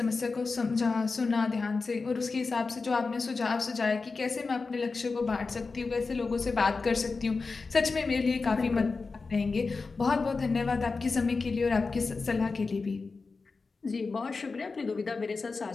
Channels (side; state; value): right; quieter; 4.2 dB